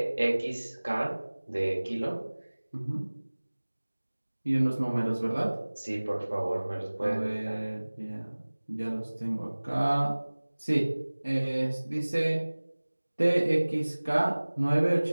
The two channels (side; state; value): both; inverted; correlation -1.00